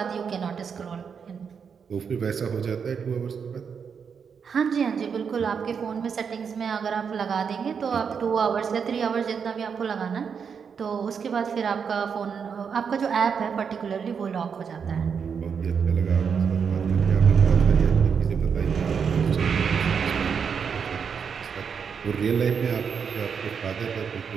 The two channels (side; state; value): left; quieter; 6.5 dB